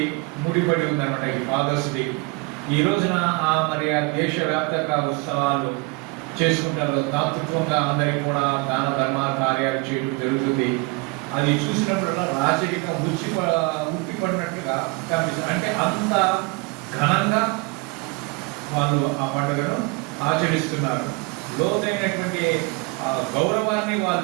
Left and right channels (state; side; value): quieter; left; 27.4 dB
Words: ముడిపడి ఉందన్నమాట ఈ ఫాదర్స్ డే. ఈ రోజున మరి ఆ దేశవ్యాప్తంగా ఉత్సవాలు చేసుకుంటారు. దాతృత్వంగా అందరికీ కూడా దాన ధర్మ కార్యాలు చేయడం జరుగుతుంది. అది చూసినప్పుడల్లా రాజరికం ఉట్టిపడినట్టుగా కనిపిస్తుంది. అంటే అంత ఘనంగా వాళ్ళు ఆ పండుగను ఆచరిస్తున్నారు. లోతైనటువంటి గౌరవాన్ని